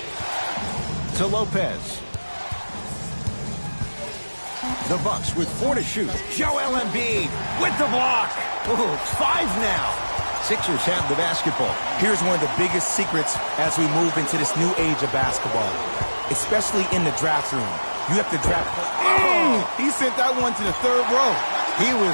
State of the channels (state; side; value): inverted; both; correlation -1.00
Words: To Lopez. The Bucks with 4 to shoot. Joel Embiid with the block. Ooh, 5 now. Sixers have the basketball. Here's one of the biggest secrets as we move into this new age of basketball, especially in the draft room. You have to draft. Oh, he sent that one to the 3rd row. He